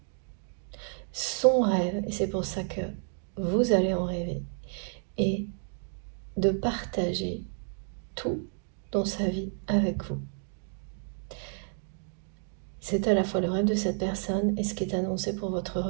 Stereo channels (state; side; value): silent; left; 57 dB below the other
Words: son rêve, et c'est pour ça que vous allez en rêver, et de partager tout dans sa vie avec vous. C'est à la fois le rêve de cette personne et ce qui est annoncé pour votre